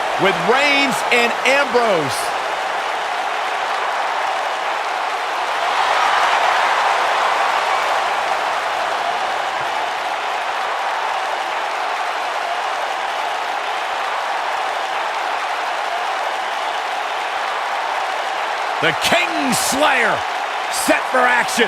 with Reigns and Ambrose. The Kingslayer set for action.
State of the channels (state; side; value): identical; both; correlation 1.00